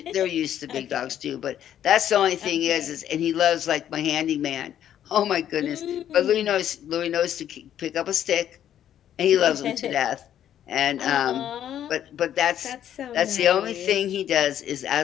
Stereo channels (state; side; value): quieter; right; 10.6 dB